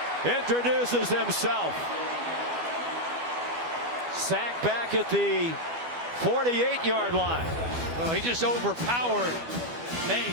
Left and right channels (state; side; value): late; left; 12 ms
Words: introduces himself. Sack back at the 48-yard line. Well, he just overpowered